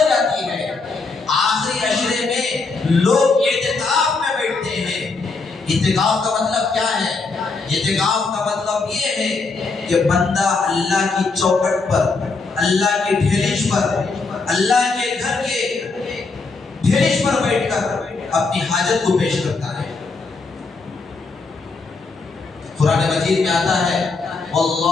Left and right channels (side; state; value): right; quieter; 4.1 dB